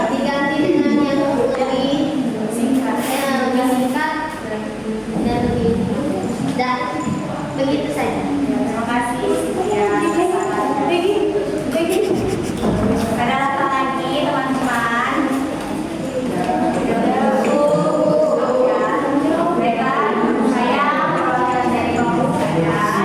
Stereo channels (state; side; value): identical; both; correlation 1.00